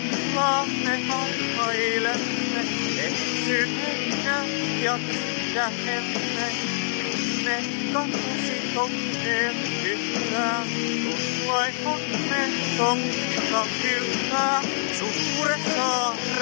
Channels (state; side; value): silent; right; digital silence